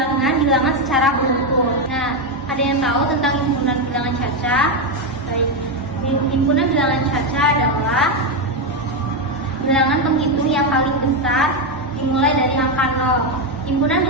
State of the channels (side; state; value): both; normal; correlation 0.07